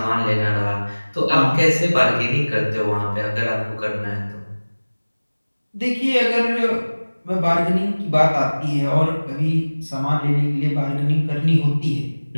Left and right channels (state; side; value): inverted; both; correlation -1.00